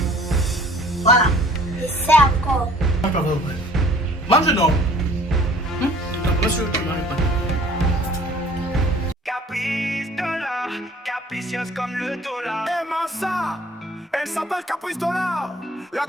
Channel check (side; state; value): both; normal; correlation 0.53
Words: Voilà. Je sais encore. Mange non. Monsieur, tu manges pas. Caprice dollar, capricieuse comme le dollar. Aimant ça, elle s'appelle Caprice Dollar. La